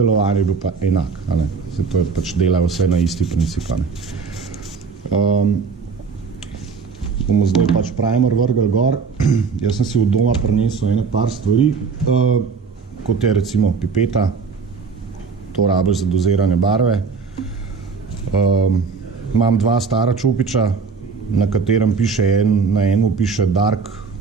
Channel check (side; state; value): left; quieter; 5.3 dB